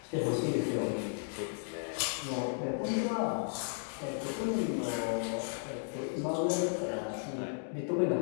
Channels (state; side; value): silent; right; digital silence